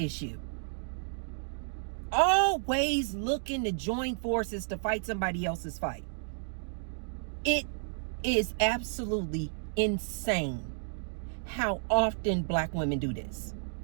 issue. Always looking to join forces to fight somebody else's fight. It is absolutely insane how often black women do this.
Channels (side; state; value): left; silent; digital silence